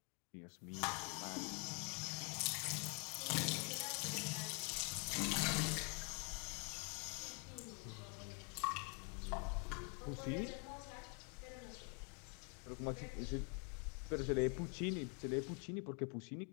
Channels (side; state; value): right; quieter; 31.6 dB